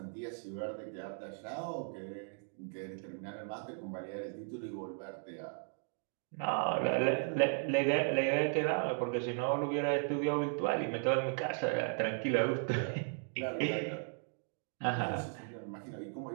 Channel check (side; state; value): left; silent; 54 dB below the other